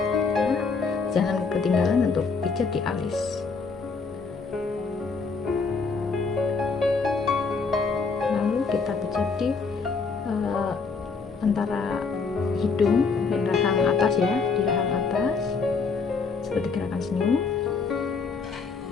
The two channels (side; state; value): right; quieter; 4.7 dB